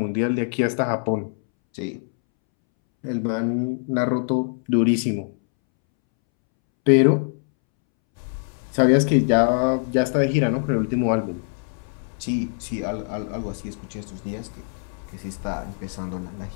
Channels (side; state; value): right; silent; 63 dB below the other